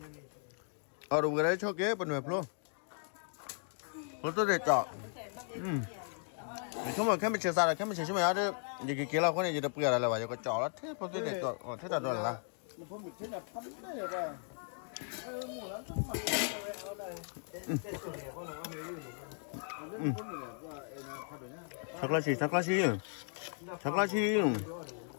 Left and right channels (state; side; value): silent; right; 54 dB below the other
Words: ở đâu cái đấy cho kế bên ngoài luôn nó tôi để chọn không mà cái mình chơi sao là cái mình chơi chứ mà đó gì cái kia là con này gì đặc biệt là vậy có chọn đó thế tôi để chọn thế là rồi là chắc là chi